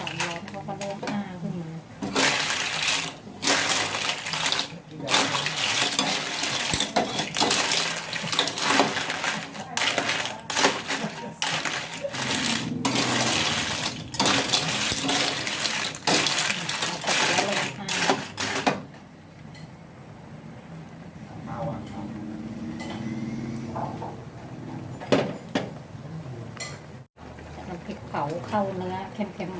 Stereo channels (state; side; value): identical; both; correlation 1.00